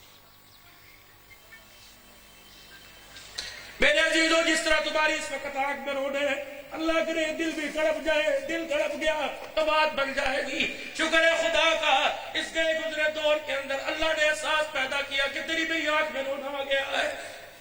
میرے عزیزوں, جس طرح تمہاری اس وقت آنکھ میں رونے ہیں, اللہ کرے دل بھی تڑپ جائے. دل تڑپ گیا تو بات بن جائے گی. شکر ہے خدا کا, اس گئے گزرے دور کے اندر اللہ نے احساس پیدا کیا کہ تیری بھی آنکھ میں رونا آ گیا ہے.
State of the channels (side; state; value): both; identical; correlation 1.00